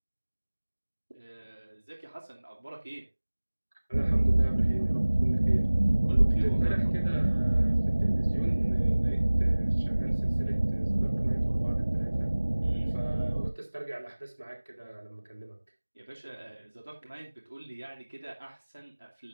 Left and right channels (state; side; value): inverted; both; correlation -1.00